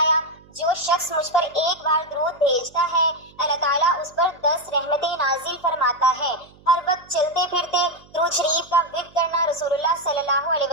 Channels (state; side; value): noise; right; hum, 26 dB below the sound